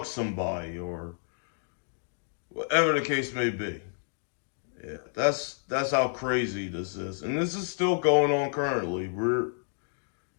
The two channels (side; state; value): right; silent; digital silence